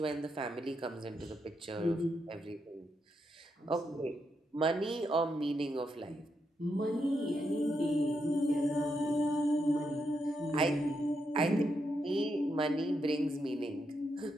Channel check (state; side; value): normal; both; correlation 0.82